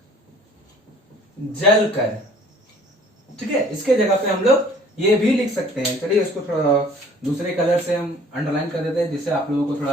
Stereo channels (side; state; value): both; normal; correlation 0.53